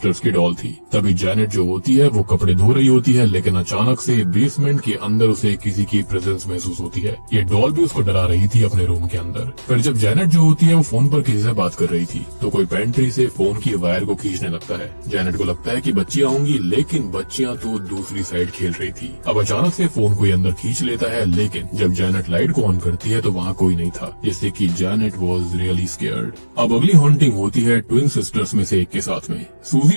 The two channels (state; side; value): inverted; both; correlation -1.00